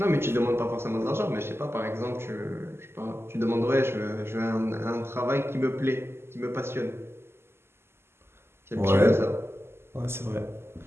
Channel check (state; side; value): late; left; 0.12 ms